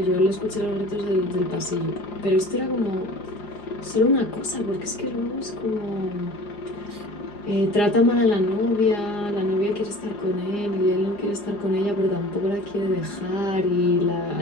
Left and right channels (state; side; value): late; right; 4.9 ms